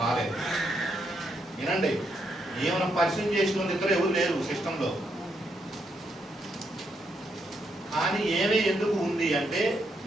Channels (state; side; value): normal; both; correlation 0.78